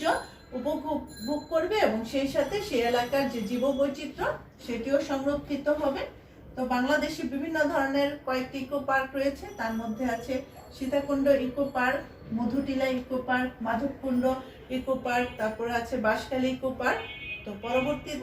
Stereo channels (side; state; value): both; identical; correlation 1.00